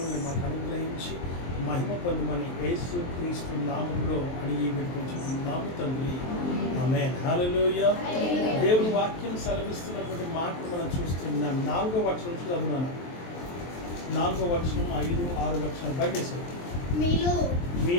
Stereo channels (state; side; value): late; right; 23 ms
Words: మాకు అనుగ్రహించి మహిమ పొందమని యేసు క్రీస్తు నామములో అడిగి వేడుకుంటున్నాము తండ్రి. ఆమేన్. హల్లెలూయా. దేవుని వాక్యం సెలవిస్తున్నటువంటి మాటలు మనం చూస్తున్నాం. 4వ వచనం చదువునాను. 4వ వచనం 5, 6 వచనం బయటేసారు.